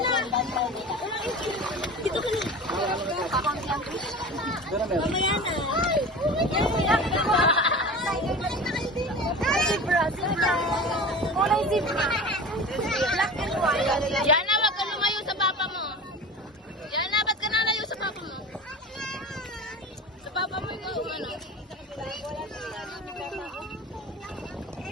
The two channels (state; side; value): normal; both; correlation 0.34